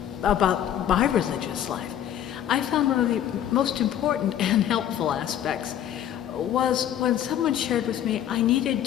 about my religious life, I found one of the most important and helpful aspects was when someone shared with me I needed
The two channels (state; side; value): quieter; right; 10.6 dB